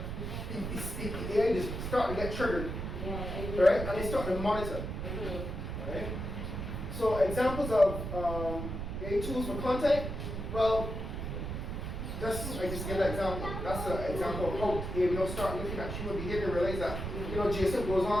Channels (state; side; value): noise; right; rumble, 5 dB below the sound